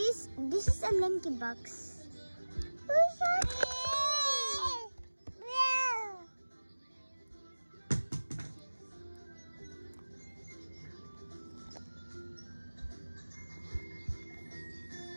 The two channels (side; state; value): both; inverted; correlation -1.00